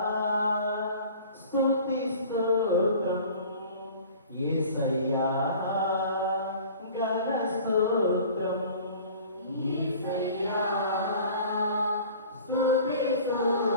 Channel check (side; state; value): both; inverted; correlation -0.45